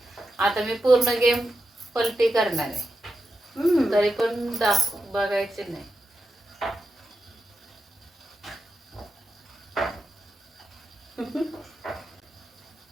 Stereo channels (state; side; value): normal; both; correlation 0.88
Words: आता मी पूर्ण गेम पलटी करणार आहे. तरी पण बघायचे नाही.